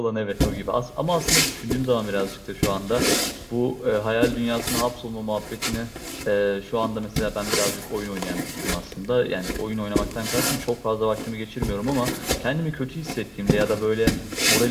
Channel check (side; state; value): both; identical; correlation 1.00